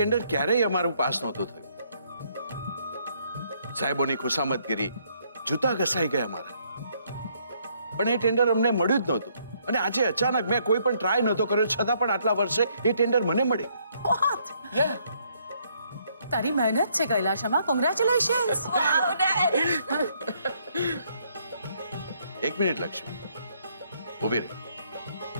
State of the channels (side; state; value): both; inverted; correlation -0.69